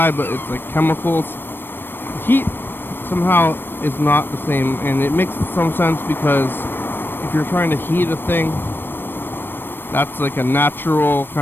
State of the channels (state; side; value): late; right; 0.097 ms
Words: but it's like chemicals. Heat somehow is not the same, and it makes some sense because if you're trying to heat a thing, that's like a natural